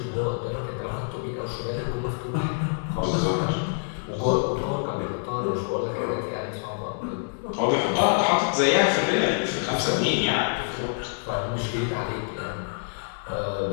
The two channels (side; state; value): right; silent; digital silence